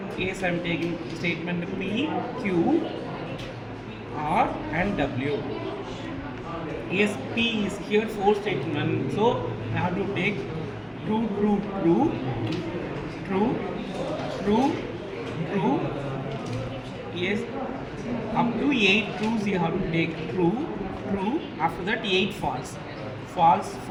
yes, I am taking statement P, Q, R and W. Yes, P is here four statement, so I have to take true, true, true, true, true, true. Yes, up to 8 trues you have to take true, true. After that 8 false, false,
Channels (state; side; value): identical; both; correlation 1.00